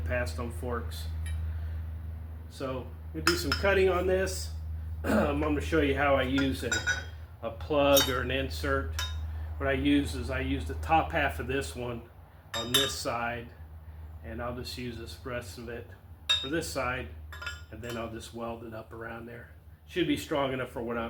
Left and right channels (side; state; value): both; identical; correlation 1.00